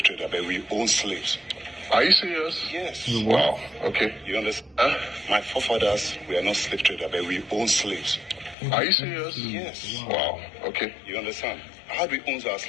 traders, but we own slaves. Are you serious? Yes. Wow. Okay. You understand? Huh? My forefathers were not slave traders, but we own slaves. Are you serious? Yes. Wow. Okay. You understand? How do we own our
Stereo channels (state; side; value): drops out; right; at 8.6 s